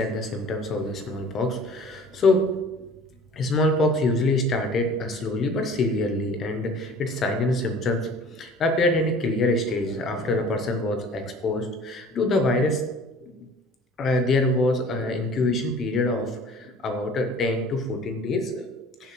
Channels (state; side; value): normal; both; correlation 0.47